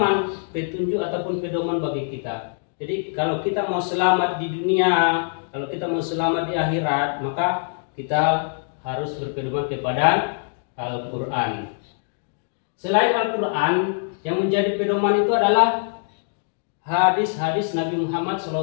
petunjuk ataupun pedoman bagi kita. Jadi kalau kita mau selamat di dunia, kalau kita mau selamat di akhirat, maka kita harus berpedoman kepada Al-Quran. Selain Al-Quran, yang menjadi pedoman itu adalah hadis-hadis Nabi Muhammad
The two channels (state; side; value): silent; right; digital silence